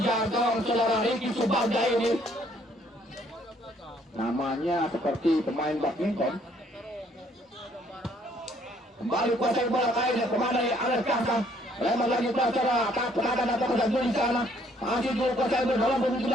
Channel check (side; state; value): both; normal; correlation 0.64